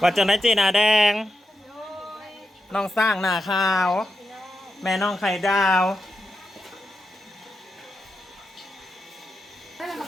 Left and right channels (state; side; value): normal; both; correlation 0.88